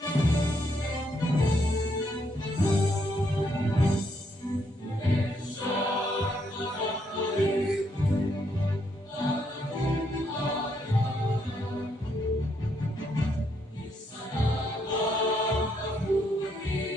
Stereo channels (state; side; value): normal; both; correlation 0.75